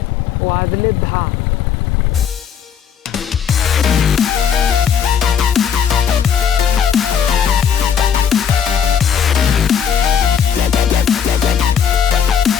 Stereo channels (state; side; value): quieter; right; 7.8 dB